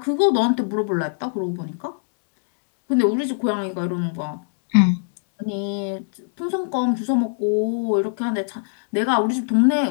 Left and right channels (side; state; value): right; silent; digital silence